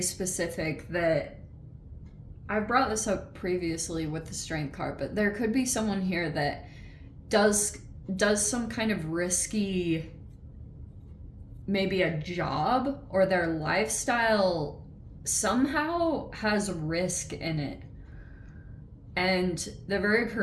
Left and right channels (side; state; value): both; identical; correlation 1.00